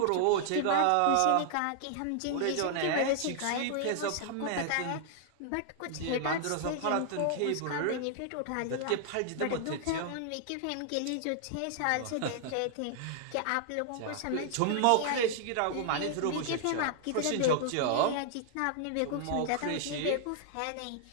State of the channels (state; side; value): different; both; correlation 0.00